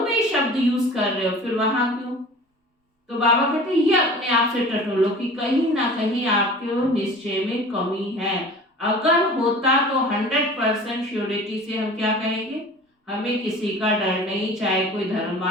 में ही शब्द यूज कर रहे हो, फिर वहां क्यों? तो बाबा कहते हैं ये अपने आप से टटोलो कि कहीं ना कहीं आपके निश्चय में कमी है। अगर होता तो 100% श्योरिटी से हम क्या कहेंगे, हमें किसी का डर नहीं, चाहे कोई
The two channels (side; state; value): both; normal; correlation 0.42